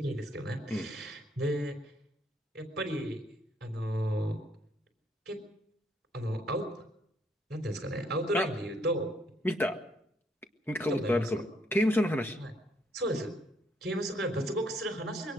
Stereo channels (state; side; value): normal; both; correlation 0.70